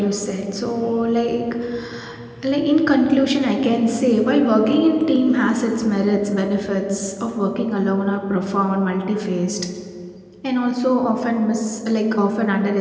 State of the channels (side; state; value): both; identical; correlation 1.00